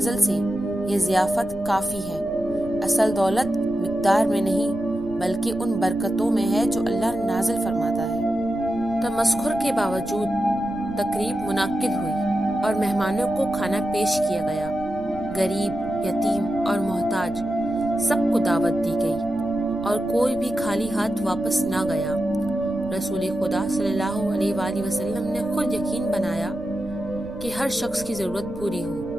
سے یہ ضیافت کافی ہے۔ اصل دولت مقدار میں نہیں بلکہ ان برکتوں میں ہے جو اللہ نازل فرماتا ہے۔ تمسخر کے باوجود تقریب منعقد ہوئی اور مہمانوں کو کھانا پیش کیا گیا۔ غریب، یتیم اور محتاج سب کو دعوت دی گئی اور کوئی بھی خالی ہاتھ واپس نہ گیا۔ رسول خدا صلی اللہ علیہ وآلہ وسلم نے خود یقین بنایا کہ ہر شخص کی ضرورت پوری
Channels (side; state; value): right; noise; rumble, 15 dB below the sound